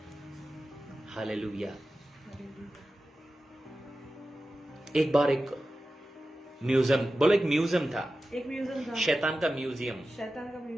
हालेलुया। एक बार एक म्यूजियम, बोलो एक म्यूजियम था, एक म्यूजियम था, शैतान का म्यूजियम। शैतान का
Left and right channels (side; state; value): both; normal; correlation 0.93